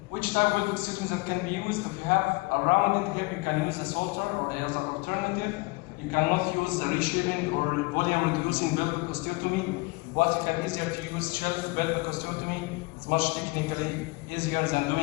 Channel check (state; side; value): quieter; right; 25.2 dB